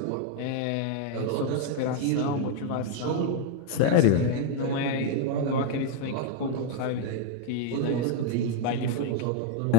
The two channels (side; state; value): both; different; correlation 0.00